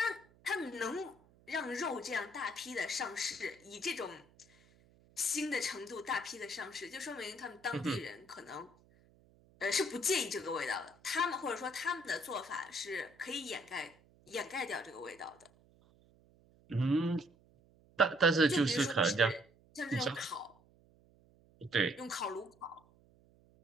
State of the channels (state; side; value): noise; right; hum, 29 dB below the sound